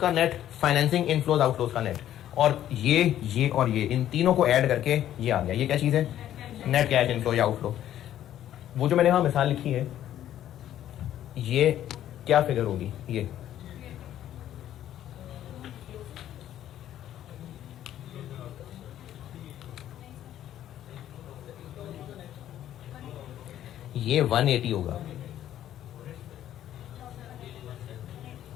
नेट, फाइनेंसिंग इनफ्लोज आउटफ्लोज का नेट, और ये और ये इन तीनों को ऐड करके ये आ गया। ये क्या चीज है? नेट कैश इनफ्लो या आउटफ्लो। वो जो मैंने वहां मिसाल लिखी है, ये क्या फिगर होगी? ये 180 होगा।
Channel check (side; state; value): right; quieter; 11.8 dB